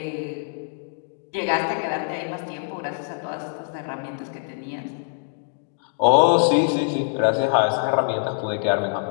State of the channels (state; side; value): silent; right; 63 dB below the other